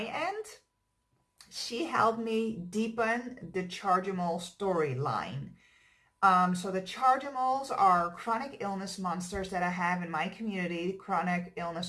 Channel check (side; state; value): both; identical; correlation 1.00